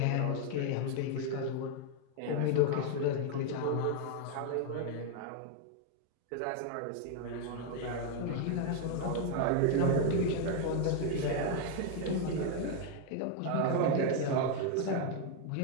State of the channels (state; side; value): different; both; correlation 0.01